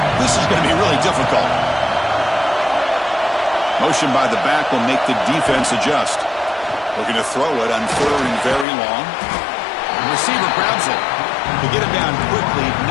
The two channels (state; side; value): drops out; right; at 8.7 s